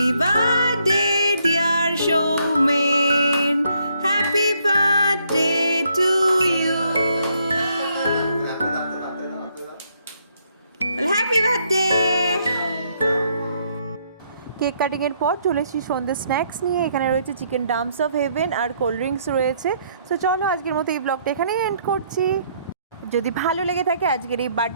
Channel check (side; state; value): both; inverted; correlation -0.71